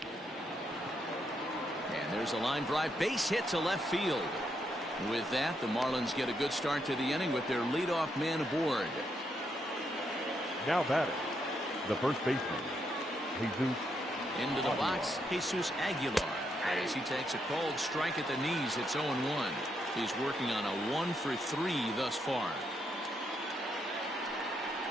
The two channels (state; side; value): normal; both; correlation 0.78